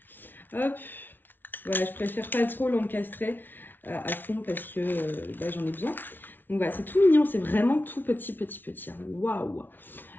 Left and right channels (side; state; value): right; late; 0.093 ms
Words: Hop, voilà, je préfère pas trop l'encastrer à fond parce que j'en ai besoin. Donc voilà, c'est tout mignon, c'est vraiment tout petit. Hein. Waouh.